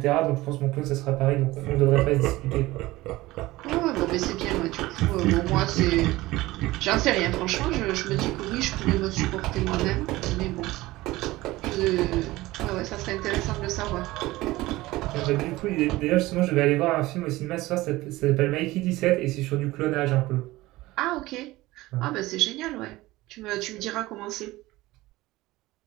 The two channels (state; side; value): quieter; left; 18.7 dB